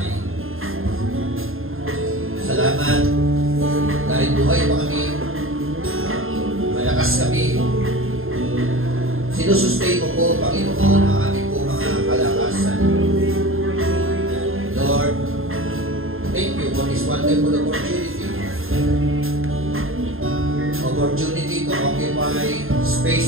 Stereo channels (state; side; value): late; left; 0.61 ms